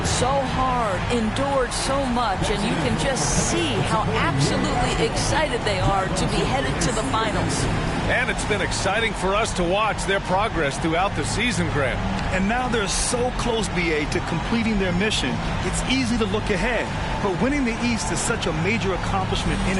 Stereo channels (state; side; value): identical; both; correlation 1.00